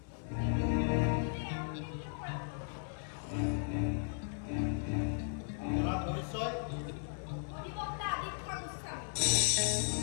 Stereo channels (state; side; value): silent; right; 54 dB below the other